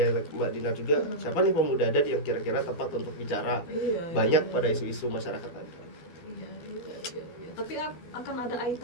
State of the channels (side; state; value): right; late; 12 ms